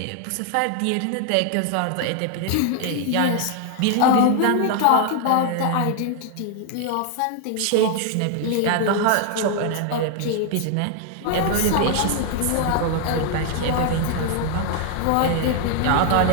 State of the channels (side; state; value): both; different; correlation 0.00